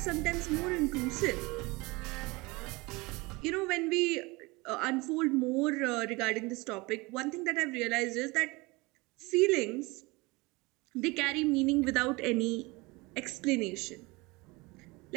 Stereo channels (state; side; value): quieter; left; 24.3 dB